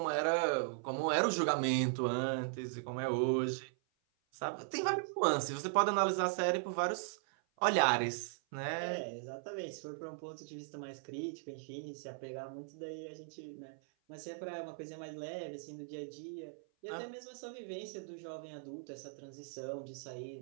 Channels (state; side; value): silent; left; 52 dB below the other